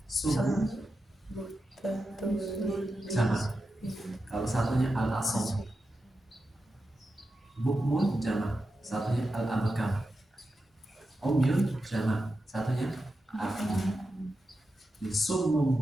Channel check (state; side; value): normal; both; correlation 0.90